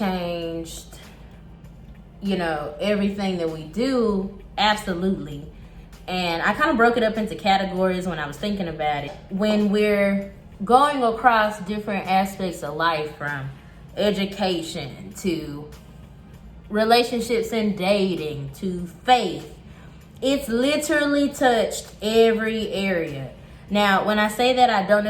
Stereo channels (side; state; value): both; identical; correlation 1.00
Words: everything that we do, absolutely. And I kind of broke it up into categories when I was thinking about it. When we're going across different aspects of life, from education to relationships and dating to faith, it's literally touched every area. Now, when I say that, I don't